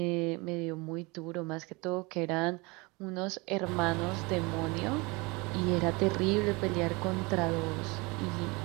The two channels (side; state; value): left; quieter; 26.1 dB